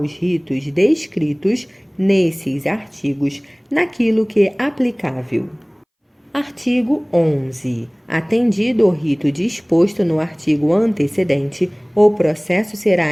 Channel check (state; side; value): identical; both; correlation 1.00